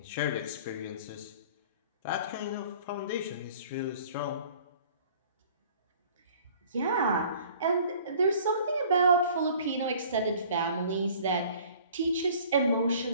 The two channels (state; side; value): inverted; both; correlation -0.51